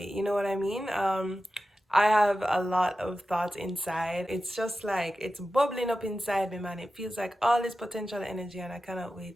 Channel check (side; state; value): both; normal; correlation 0.93